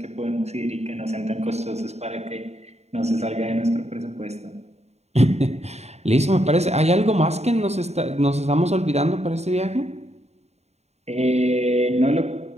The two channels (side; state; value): left; late; 0.31 ms